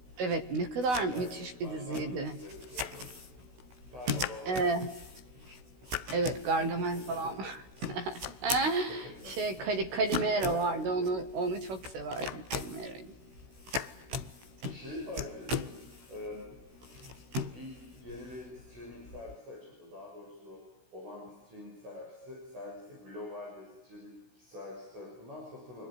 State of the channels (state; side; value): late; left; 16 ms